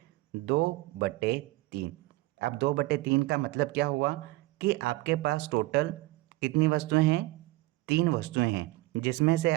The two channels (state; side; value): quieter; left; 19.5 dB